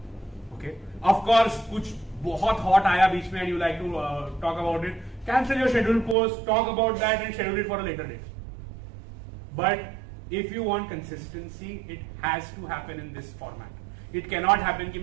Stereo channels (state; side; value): drops out; left; at 6.2 s